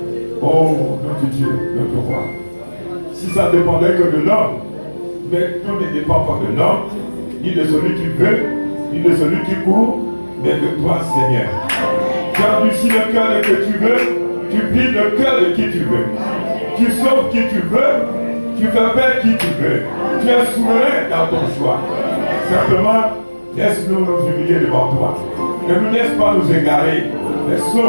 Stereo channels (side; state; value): both; inverted; correlation -1.00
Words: Oh, notre Dieu, notre roi. Si ça dépendait que de l'homme, mais tout ne dépend pas de l'homme, ni de celui qui veut, ni de celui qui court, mais de toi, Seigneur. Tu endurcis le cœur que tu veux, tu plies le cœur de qui tu veux. Tu sauves qui tu veux, tu fais faire qui tu veux. Tu es souverain dans ton choix. Simplement, laisse-nous nous humilier devant toi. Ne nous laisse pas nous égarer, mais